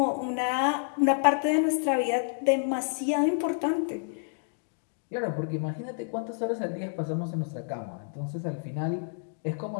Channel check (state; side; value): silent; right; digital silence